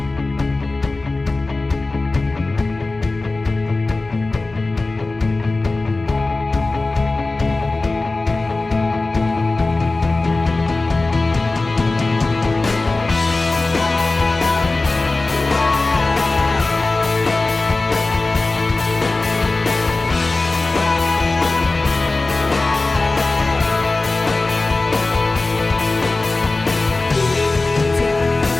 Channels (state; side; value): quieter; right; 3.3 dB